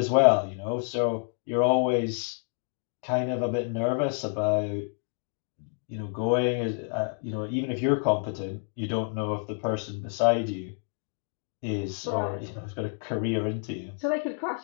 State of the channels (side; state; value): right; silent; 57 dB below the other